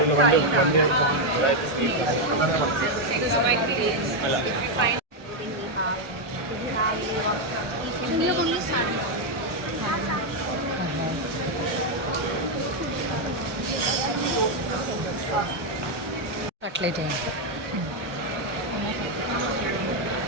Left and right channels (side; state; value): left; late; 1.1 ms